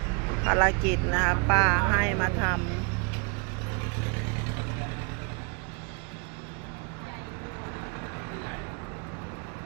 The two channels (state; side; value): quieter; left; 33.4 dB